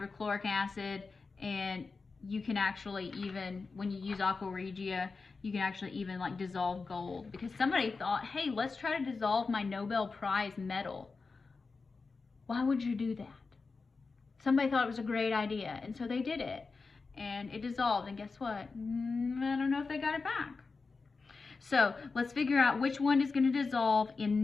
acid, and you can actually, even when you use aqua regia, you can actually even like dissolve gold, because somebody thought, hey, let's try to dissolve my Nobel Prize medal. Why would you do that? Somebody thought it was a great idea, and so they did it, and it dissolved, and guess what? I don't know if they got it back. So let's figure out which one is going to dissolve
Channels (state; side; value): quieter; right; 4.3 dB